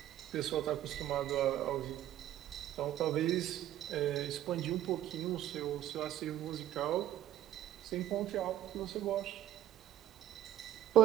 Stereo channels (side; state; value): left; quieter; 12.6 dB